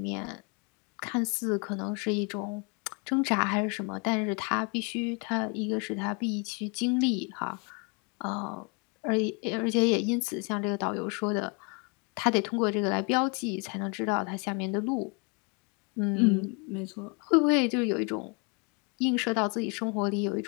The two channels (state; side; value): quieter; right; 33.5 dB